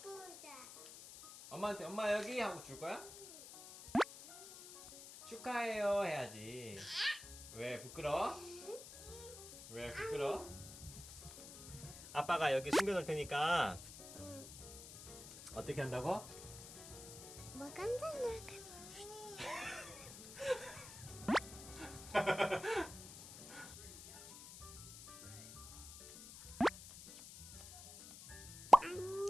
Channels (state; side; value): noise; left; hiss, 14 dB below the sound